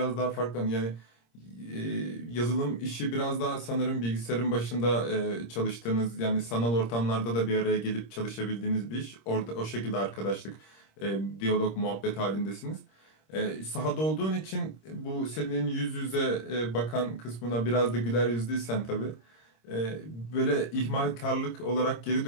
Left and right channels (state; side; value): late; right; 26 ms